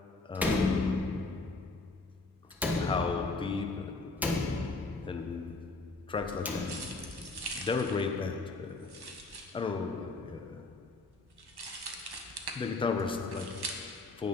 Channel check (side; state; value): right; quieter; 3.3 dB